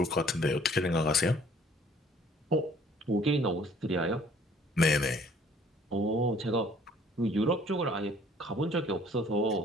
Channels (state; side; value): normal; both; correlation 0.56